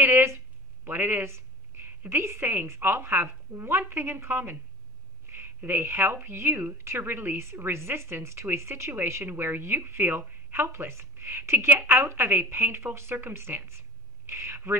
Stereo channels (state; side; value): normal; both; correlation 0.41